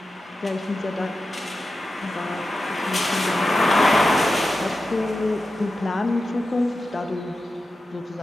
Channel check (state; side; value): normal; both; correlation 0.92